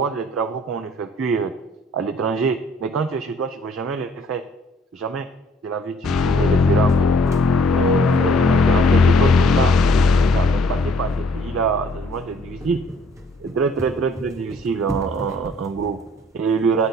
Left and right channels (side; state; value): both; normal; correlation 0.61